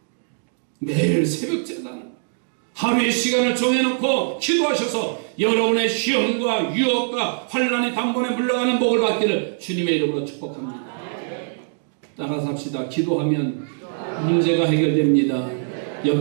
매일 새벽 제단을 하루의 시간을 정해놓고 기도하셔서 여러분의 시험과 유혹과 환란이 단번에 물러가는 복을 받기를 주님의 이름으로 축복합니다. 따라서 합시다. 기도하면 문제가 해결됩니다.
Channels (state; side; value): silent; left; digital silence